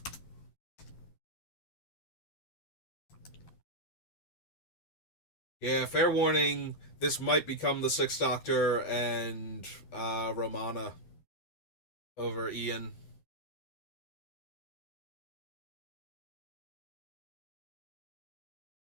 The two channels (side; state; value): right; late; 11 ms